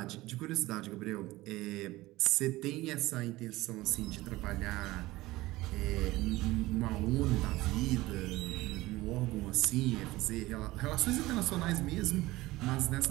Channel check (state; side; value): quieter; left; 18.7 dB